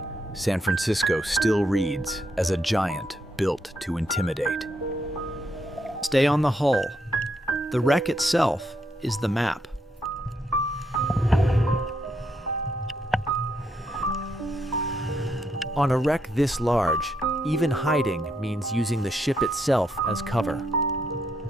San Francisco still reads as a giant built to intimidate. Stay on the hull. The wreck itself is the map. On a wreck this large, even hiding means using the ship itself as cover.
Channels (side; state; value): both; normal; correlation 0.77